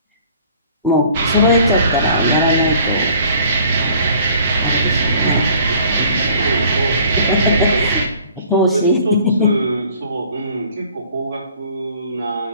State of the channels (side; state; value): both; inverted; correlation -0.53